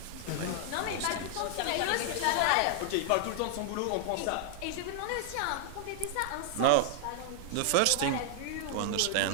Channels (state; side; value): different; both; correlation -0.01